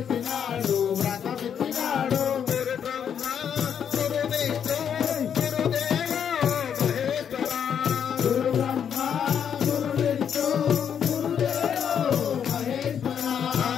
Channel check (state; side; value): quieter; right; 8.2 dB